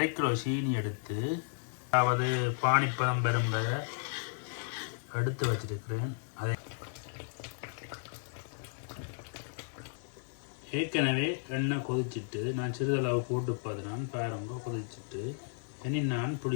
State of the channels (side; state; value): right; silent; digital silence